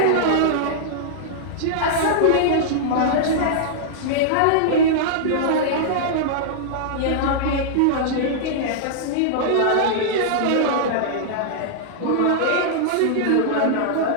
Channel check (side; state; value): both; different; correlation -0.02